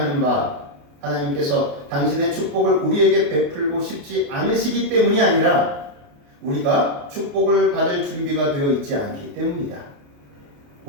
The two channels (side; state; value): left; late; 28 ms